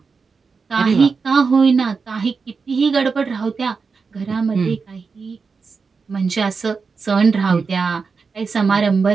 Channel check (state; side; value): quieter; left; 5.0 dB